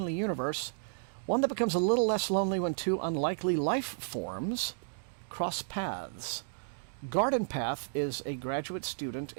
universe, one that becomes a little less lonely when two unlikely life forms cross paths. Garden Path is a graduate student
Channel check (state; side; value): silent; left; digital silence